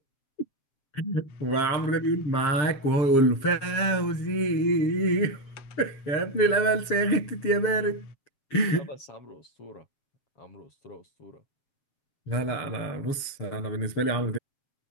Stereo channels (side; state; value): right; late; 7.4 ms